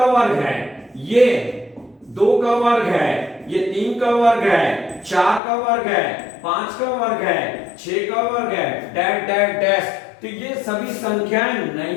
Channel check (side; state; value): right; drops out; at 5.4 s